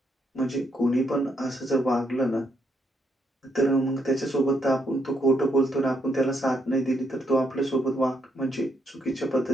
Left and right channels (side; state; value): both; normal; correlation 0.76